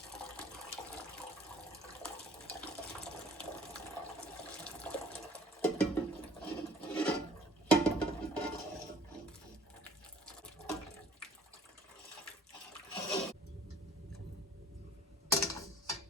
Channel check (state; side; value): normal; both; correlation 0.52